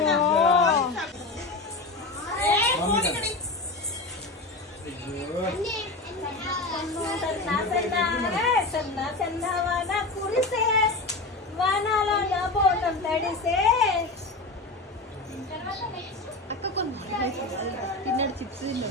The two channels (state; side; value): quieter; right; 3.2 dB